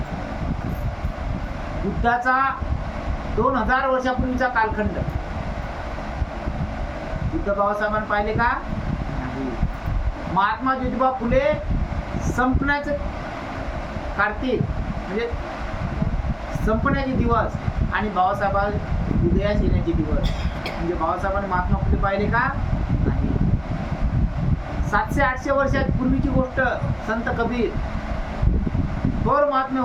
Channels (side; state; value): both; identical; correlation 1.00